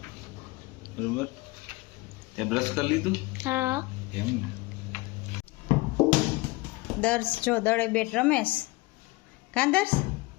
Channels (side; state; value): right; quieter; 22.9 dB